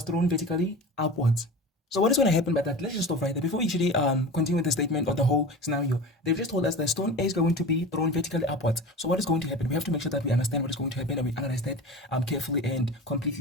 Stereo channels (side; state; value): both; normal; correlation 0.33